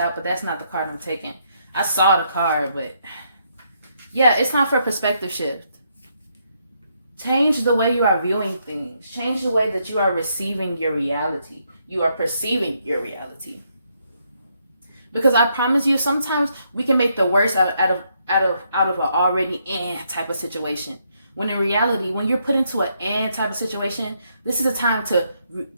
but that's not the card I'm taking. I saw the card, but yeah, it's time for a perspective shift. Change the way you are viewing things. Change the way that you are receiving your reality. You are perceiving your reality. Because I promise you, sometimes we can make the worst out of an already type of situation. When in reality, when you're put into an type of situation, this is a time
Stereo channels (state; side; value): inverted; both; correlation -0.75